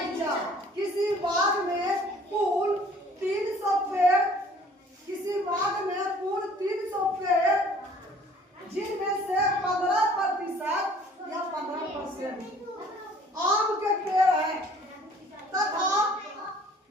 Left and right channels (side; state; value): both; normal; correlation 0.54